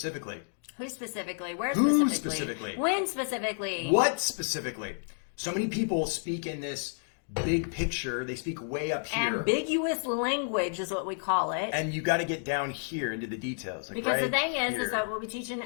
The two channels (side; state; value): right; silent; digital silence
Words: Who specifically? Where Who specifically? specifically? When specifically? What specifically? So many people speak in this big picture. They speak way up here. Ambiguous language is what we call it. And you got to get down here into the details. Like Because right the thing is here. that what we teach in